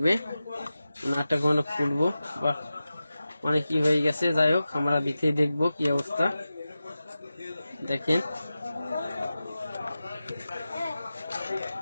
নাটটা কোনো খুলবো বা মানে কি হয়ে গেছে। যাই হোক আমরা ভিতরে দেখবো কি অবস্থা। দেখেন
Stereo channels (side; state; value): both; inverted; correlation -0.94